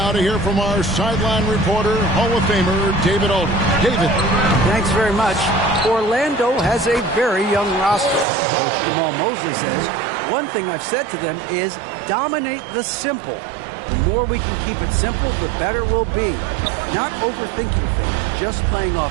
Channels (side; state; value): left; drops out; at 8.2 s